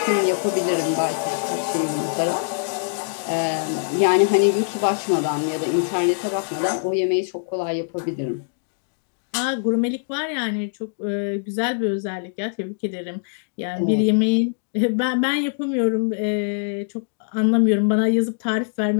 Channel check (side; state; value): right; silent; digital silence